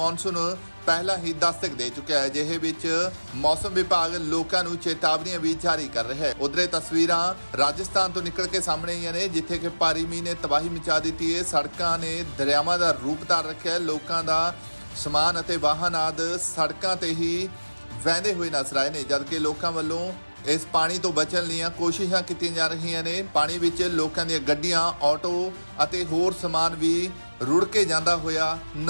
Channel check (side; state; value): both; inverted; correlation -1.00